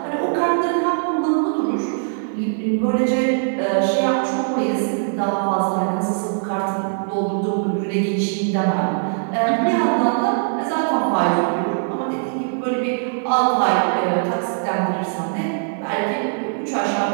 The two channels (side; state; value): left; silent; digital silence